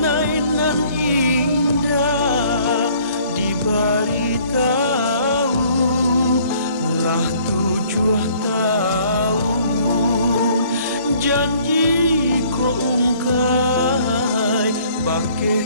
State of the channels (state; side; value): inverted; both; correlation -0.57